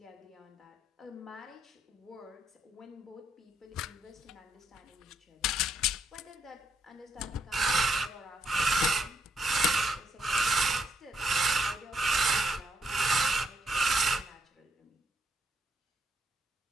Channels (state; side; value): normal; both; correlation 0.76